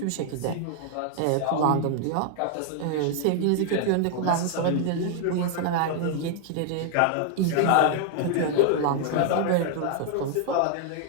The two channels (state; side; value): different; both; correlation 0.00